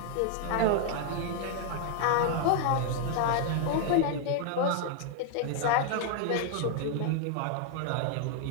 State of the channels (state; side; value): different; both; correlation 0.00